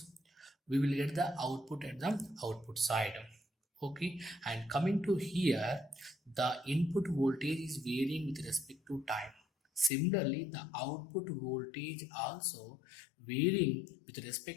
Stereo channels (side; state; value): right; drops out; at 9.9 s